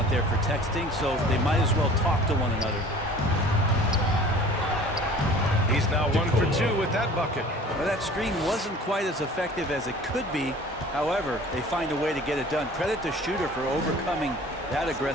there for texting, so they might as well talk to one another. He's now 1 for 2 with that bucket. Well, that screen wasn't quite as effective as it could be. However, they find a way to get it done. Credit the shooter for overcoming that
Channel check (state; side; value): normal; both; correlation 0.46